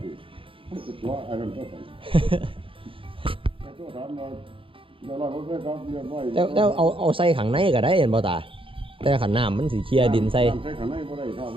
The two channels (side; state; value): left; late; 0.26 ms